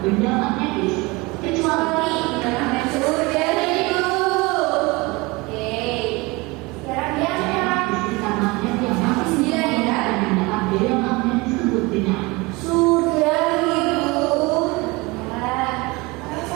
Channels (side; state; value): left; quieter; 24.4 dB